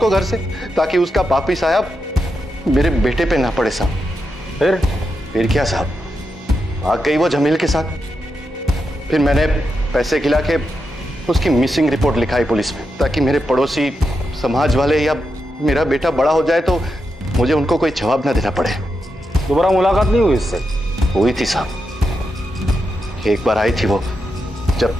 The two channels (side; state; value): both; normal; correlation 0.86